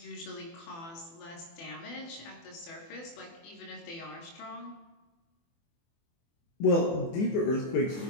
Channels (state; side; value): late; right; 24 ms